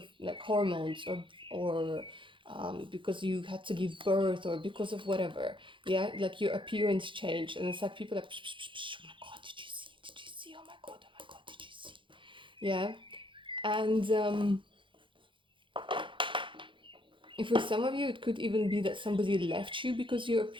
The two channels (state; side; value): late; left; 0.24 ms